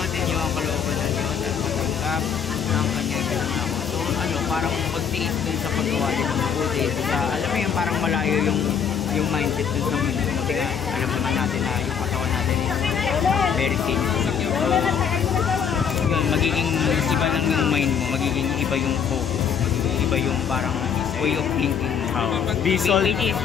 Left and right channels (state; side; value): quieter; right; 7.3 dB